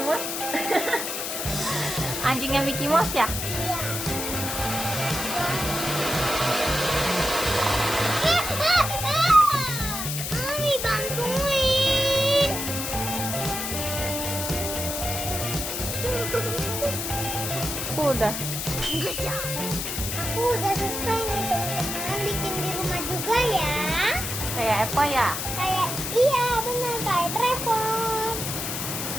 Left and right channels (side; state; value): left; noise; hiss, 3 dB below the sound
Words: Mouse. Anjingnya Mickey Mouse ya? Iya. Mami bantuin. Udah. Aku udah selesai nih teman-teman, bikin di rumah juga ya. Kayak apa ya? Kayak iya benar kayak Trevor.